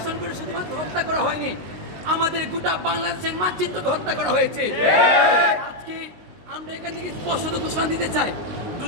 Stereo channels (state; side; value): late; left; 19 ms